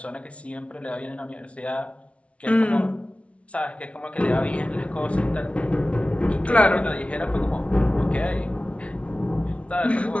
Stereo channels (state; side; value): late; right; 0.062 ms